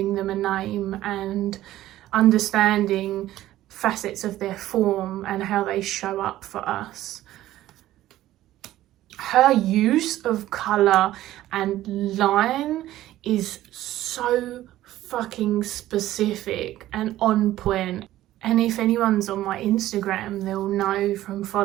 them a name and understanding facets of their form and how they show up for us. Her use of colour and line is so fucking specific and on point. And if anyone's on my Instagram, they'll know from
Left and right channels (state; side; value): quieter; left; 14.5 dB